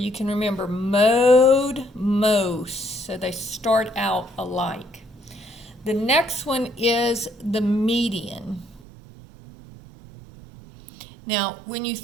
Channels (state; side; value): drops out; left; at 8.8 s